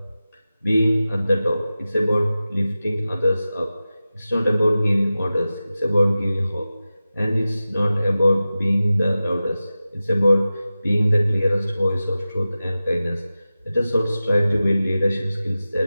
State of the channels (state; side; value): inverted; both; correlation -0.95